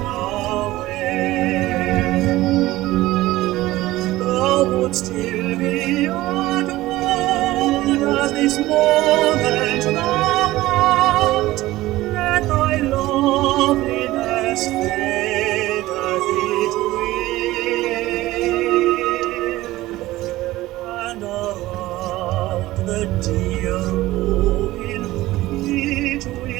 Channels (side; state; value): left; quieter; 17.2 dB